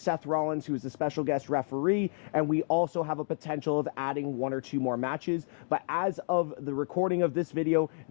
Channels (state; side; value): silent; right; 58 dB below the other